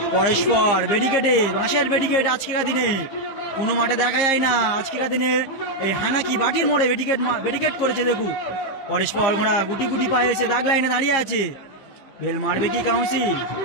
পরস্পর ব্যারিকেডে বাঁশের ব্যারিকেড আজকের দিনে কোনো মাঠে দেখা যায় না। আজকের দিনে এই হানাকি বাটির মোড়ে ব্যারিকেড করেছে, দেখুন। পরস্পর ঘোড়া গুটি গুটি পায়ে এসে দাগ লাইনে দাঁড়িয়ে আছে। বেল মারবে কি কাউন্সিল।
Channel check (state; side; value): late; right; 15 ms